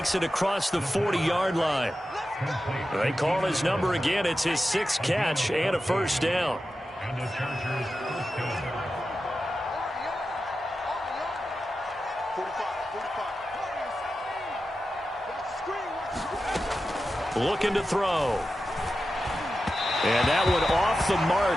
it across the 40-yard line. They call his number again. It's his 6th catch and a first down. And the Chargers first down. Looking to throw. And that one off the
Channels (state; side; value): normal; both; correlation 0.92